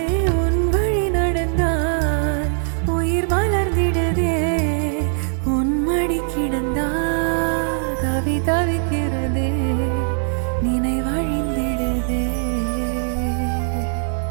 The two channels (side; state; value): left; silent; digital silence